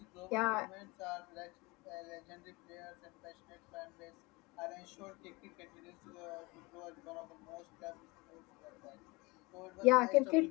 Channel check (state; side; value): quieter; right; 24.6 dB